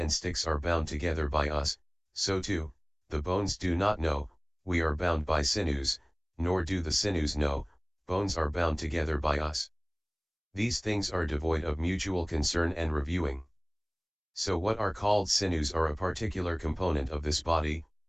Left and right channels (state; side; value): identical; both; correlation 1.00